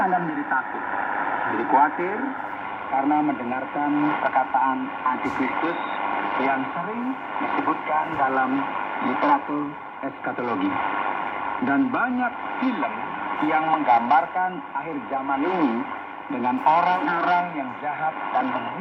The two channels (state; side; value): identical; both; correlation 1.00